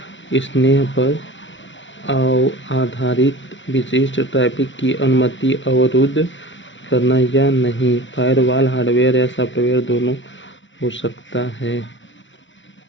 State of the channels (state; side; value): late; right; 0.54 ms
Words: स्तर पर आधारित विशिष्ट ट्रैफिक की अनुमति अवरुद्ध करना या नहीं। फायरवॉल हार्डवेयर या सॉफ्टवेयर दोनों हो सकता है।